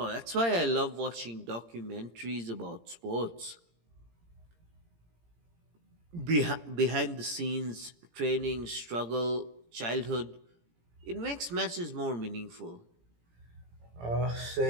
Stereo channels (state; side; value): late; left; 17 ms